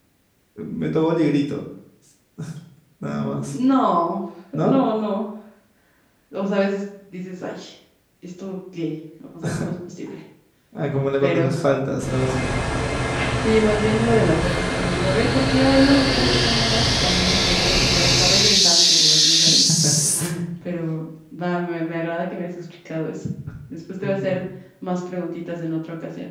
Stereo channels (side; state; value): both; identical; correlation 1.00